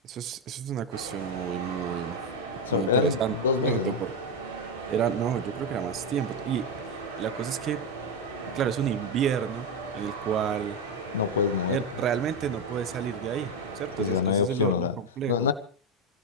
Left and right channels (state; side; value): normal; both; correlation 0.08